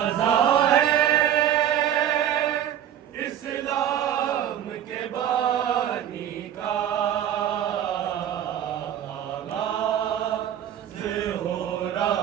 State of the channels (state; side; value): quieter; left; 10.4 dB